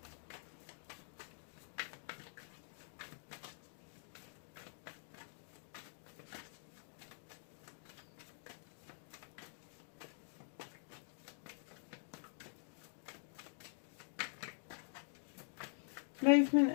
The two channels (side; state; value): right; silent; digital silence